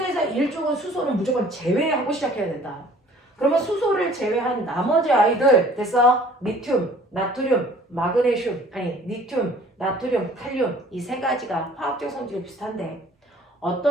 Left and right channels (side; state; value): both; normal; correlation 0.52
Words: 1쪽은 수소는 무조건 제외하고 시작해야 된다. 그러면 수소를 제외한 나머지 아이들 됐어? 리튬, 나트륨, 마그네슘, 아니 리튬, 나트륨, 칼륨 이 3가지가 화학적 성질이 비슷한데